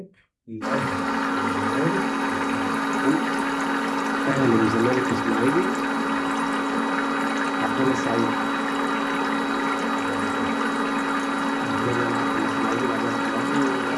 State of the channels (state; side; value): identical; both; correlation 1.00